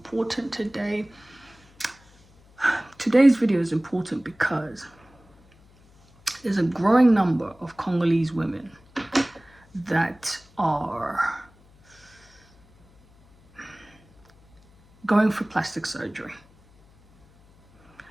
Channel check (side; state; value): left; noise; hum, 28 dB below the sound